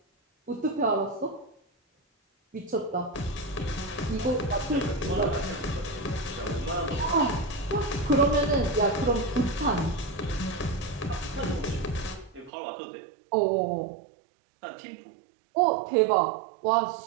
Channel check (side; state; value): left; drops out; at 12.5 s